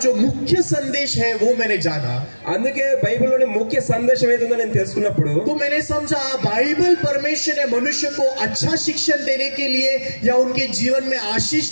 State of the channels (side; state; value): both; inverted; correlation -1.00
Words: जो मुख्य संदेश है वो मैंने जाना, అందుకే బైబిల్లోని ముఖ్య సందేశం ఏదో నేను తెలుసుకున్నప్పుడు तो मैंने समझा बाइबल परमेश्वर ने मनुष्य को अच्छा शिक्षण देने के लिए या उनके जीवन में आशीष